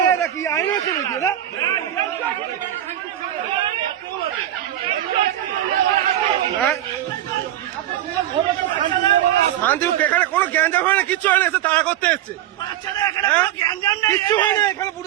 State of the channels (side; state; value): left; quieter; 12.2 dB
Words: এটা কি আইন আছে নাকি? এটা শান্তি এখানে কোনো গ্যাঞ্জাম হয় না, কিচ্ছু হয় না, এসে তাড়া করতে এসছে। কিচ্ছু হয় না এখানে,